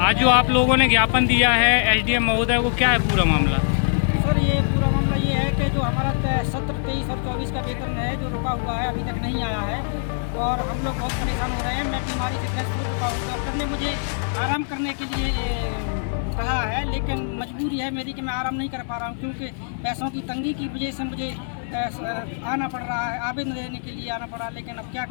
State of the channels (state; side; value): silent; right; digital silence